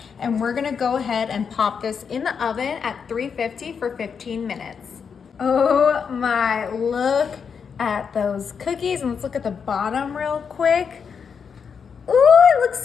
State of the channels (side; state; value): right; quieter; 6.4 dB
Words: and we're gonna go ahead and pop this in the oven at 350 for 15 minutes. Oh my, look at those cookies, and let's look at the bottom real quick. Ooh, it looks